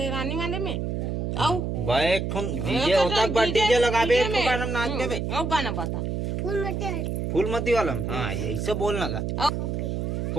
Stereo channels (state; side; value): noise; right; hum, 2 dB below the sound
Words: रानी वाले में आओ भाई एक डीजे होता डीजे लगाबे एक का नाम नाच देबे आओ गाना बता फूलमती वाला में? हाँ ये ऐसे बोलना का